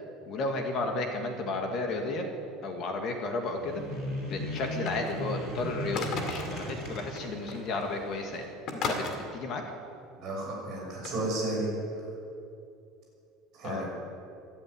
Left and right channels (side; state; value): both; normal; correlation 0.38